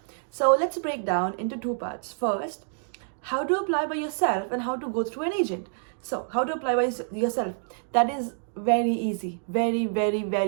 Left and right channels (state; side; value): silent; left; digital silence